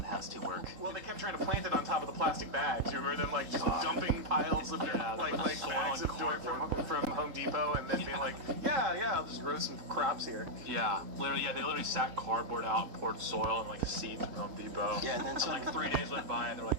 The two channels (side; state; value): left; late; 3.8 ms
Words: has to work. Well, they kept trying to plant it on top of the plastic bags. You remember them like just dumping piles of like bags of dirt from Home Depot, and then being like, yeah, I'll just grow some crops here. Yeah, literally, they literally sat cardboard out, poured soil and like seeds from Home Depot. Yeah, and then some, like 3 days went by, and they're like,